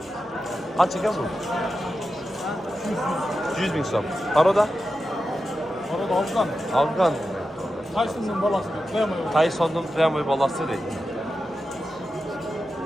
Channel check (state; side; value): normal; both; correlation 0.91